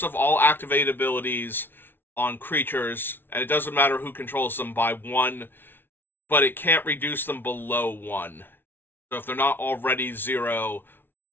of all activated abilities on creatures, and it doesn't matter who controls them, by 1, but it can't reduce them below 1. So if they're not already 0,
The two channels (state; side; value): late; right; 0.10 ms